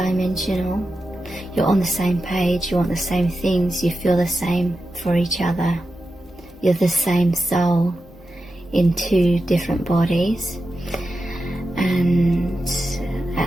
You're on the same page, you want the same things, you feel the same for each other. You're the same soul in two different bodies. And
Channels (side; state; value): both; normal; correlation 0.90